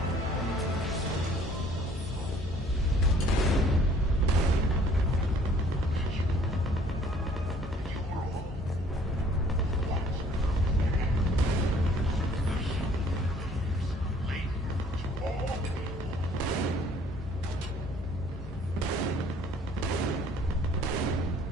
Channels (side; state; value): both; normal; correlation 0.57